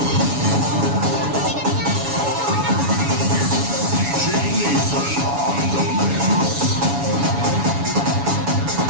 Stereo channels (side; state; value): left; late; 7.1 ms